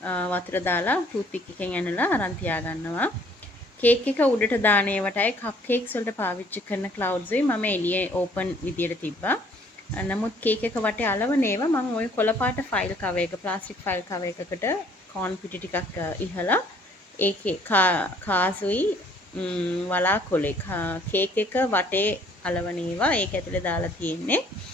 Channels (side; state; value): both; normal; correlation 0.60